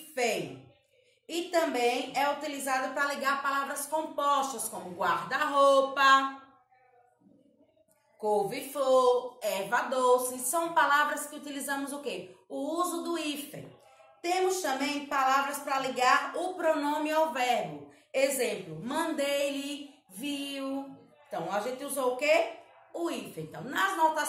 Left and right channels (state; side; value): identical; both; correlation 1.00